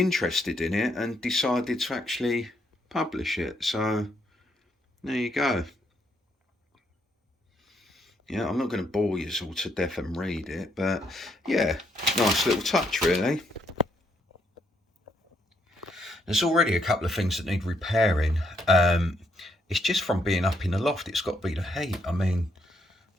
in it and decided to actually publish it. So there you go. Yeah, I'm not going to bore you all to death and read it, but yeah, nice little touch really. There's already a couple of things that need repairing. It's just from being up in the loft. It's got to be the heat. I mean,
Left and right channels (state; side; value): normal; both; correlation 0.75